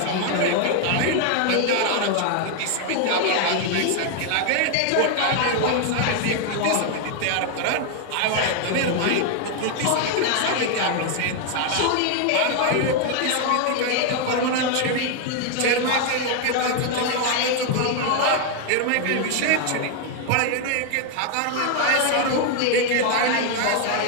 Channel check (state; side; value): different; both; correlation 0.00